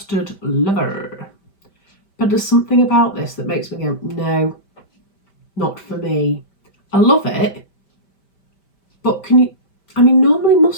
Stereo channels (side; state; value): right; late; 5.1 ms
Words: lover, but there's something about this that makes me go, no, not for me. I love it, but normally